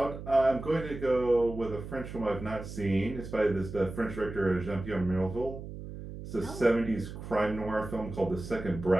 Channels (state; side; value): noise; right; hum, 10 dB below the sound